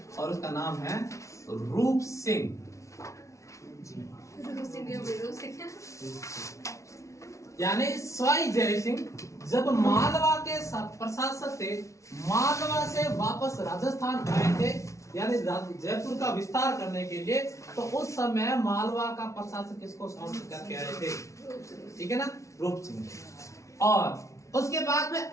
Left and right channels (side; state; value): right; late; 0.14 ms